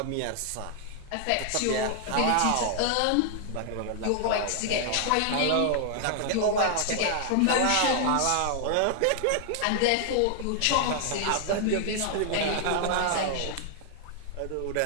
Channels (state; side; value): different; both; correlation 0.00